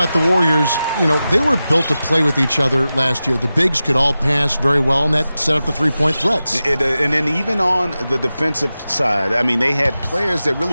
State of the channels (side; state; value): both; inverted; correlation -0.94